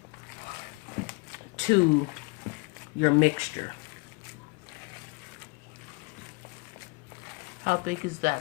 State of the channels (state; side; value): quieter; right; 29.6 dB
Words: to your mixture. How big is